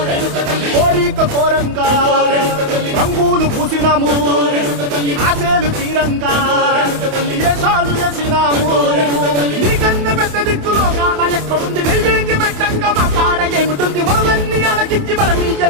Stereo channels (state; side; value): late; left; 28 ms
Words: కోరిక కోరంగా రంగులు పూసినాము ఆశలు తీరంగా ఏసాలు వేసినాము నీకన్నా పెద్ద దిక్కులో కాన ఎక్కడుంది నైవేద్యం ఎట్టంగా మా కాడ ఏమిటుంది మనలన్నీ అడగిచ్చి